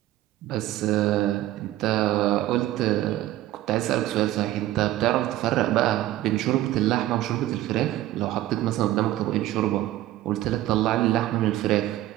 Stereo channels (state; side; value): quieter; left; 14.8 dB